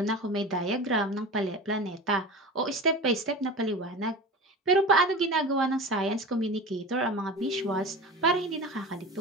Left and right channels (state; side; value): normal; both; correlation 0.31